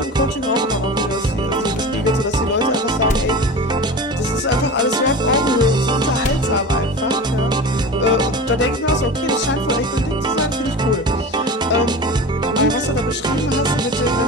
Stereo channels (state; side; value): normal; both; correlation 0.32